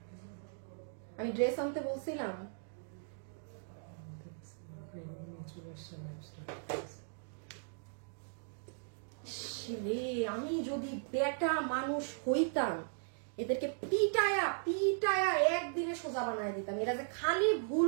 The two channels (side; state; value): left; silent; digital silence